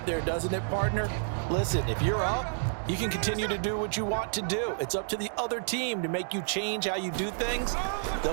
there, doesn't it, partner? Listen, if you're up, you can continue to do what you want to do. It's up to the other team to make you change how you do things. They'll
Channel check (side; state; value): left; silent; digital silence